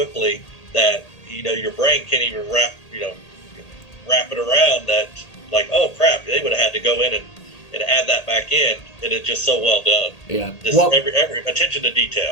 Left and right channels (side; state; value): right; late; 1.8 ms